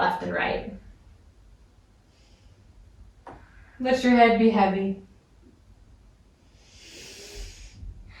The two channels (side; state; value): both; identical; correlation 1.00